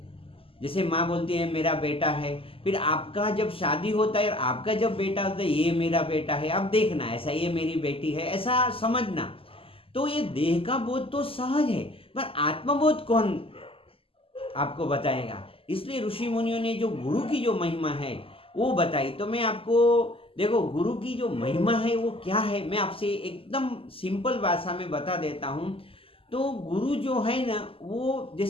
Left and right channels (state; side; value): late; right; 0.26 ms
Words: जैसे माँ बोलती है मेरा बेटा है, फिर आपका जब शादी होता है, आपका जब बेटा होता है ये मेरा बेटा है, आप देखना ऐसा ये मेरी बेटी है, ऐसा समझना। तो ये देह का बोध तो सहज है, पर आत्मबोध कौन आपको बताएगा। इसलिए ऋषि मुनियों ने जो गुरु की जो महिमा है वो बताई। तो मैं आपको देखो गुरु की जो महिमा है वो क्या है, मैं आपसे एकदम सिंपल भाषा में बता देता हूँ। तो गुरु जो है ना वो